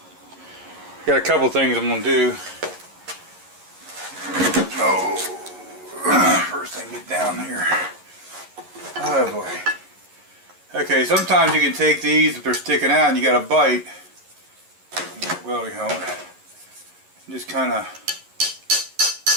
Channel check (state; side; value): late; left; 11 ms